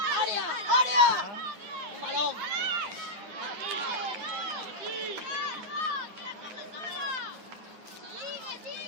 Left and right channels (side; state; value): left; late; 9.5 ms